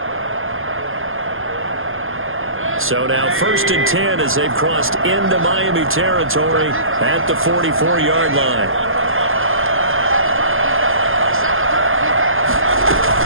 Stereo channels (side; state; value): left; late; 0.60 ms